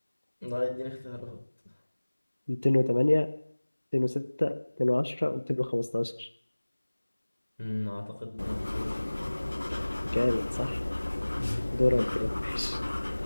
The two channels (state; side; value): inverted; both; correlation -1.00